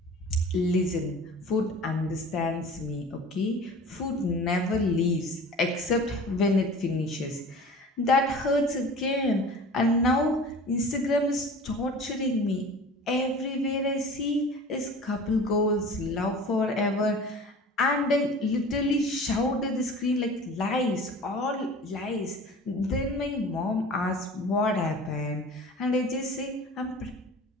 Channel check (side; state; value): both; normal; correlation 0.41